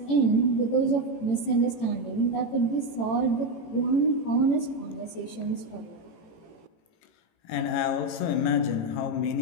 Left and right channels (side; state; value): right; late; 18 ms